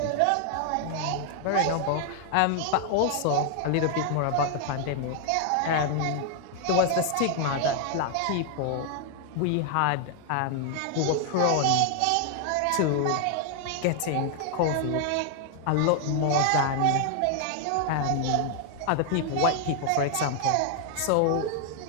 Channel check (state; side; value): different; both; correlation 0.00